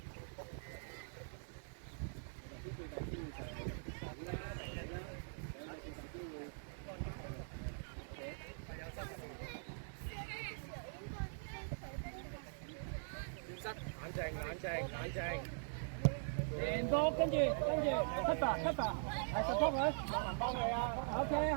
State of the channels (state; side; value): silent; left; digital silence